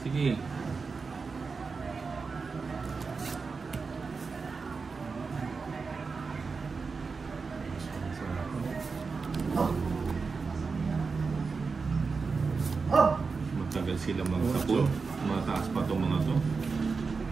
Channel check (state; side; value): quieter; left; 4.7 dB